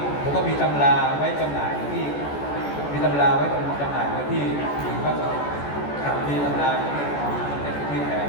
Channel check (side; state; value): right; late; 14 ms